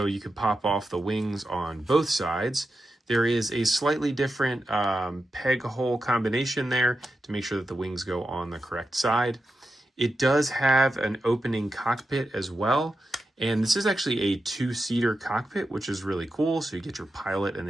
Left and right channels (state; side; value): normal; both; correlation 0.89